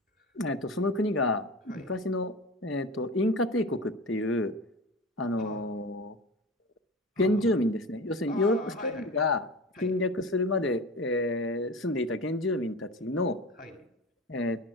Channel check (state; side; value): normal; both; correlation 0.31